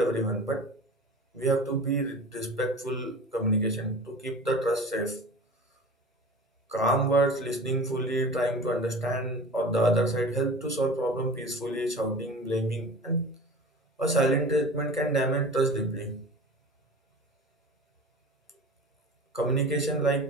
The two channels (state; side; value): normal; both; correlation 0.37